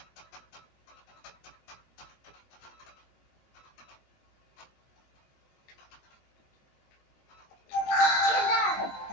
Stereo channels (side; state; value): right; late; 22 ms